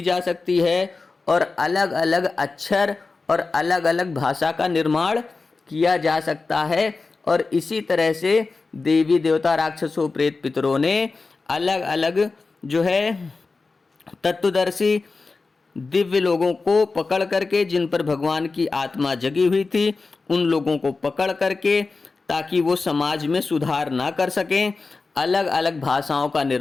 जा सकती है और अलग अलग अक्षर और अलग अलग भाषा का निर्माण किया जा सकता है। और इसी तरह से देवी देवता राक्षसों प्रेत पितरों ने अलग अलग जो है तत्वदर्शी दिव्य लोगों को पकड़ करके, जिन पर भगवान की आत्मा जगी हुई थी, उन लोगों को पकड़ करके ताकि वो समाज में सुधार ना कर सकें, अलग अलग भाषाओं का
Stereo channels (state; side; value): quieter; right; 4.0 dB